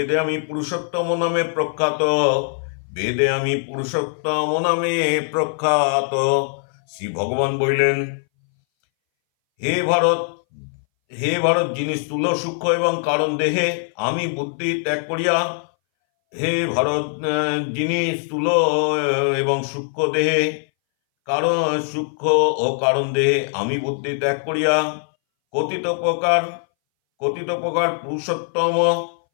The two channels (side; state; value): right; silent; 62 dB below the other